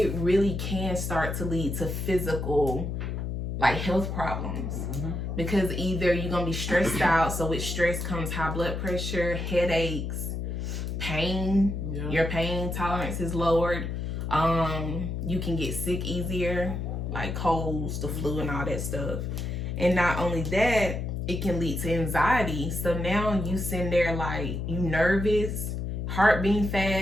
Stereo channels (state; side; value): noise; left; hum, 3 dB below the sound